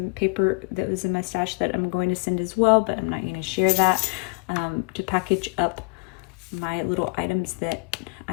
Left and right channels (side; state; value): right; quieter; 32.8 dB